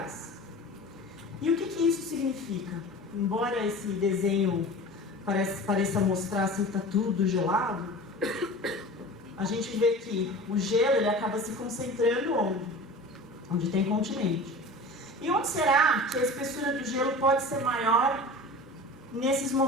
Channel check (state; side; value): normal; both; correlation 0.36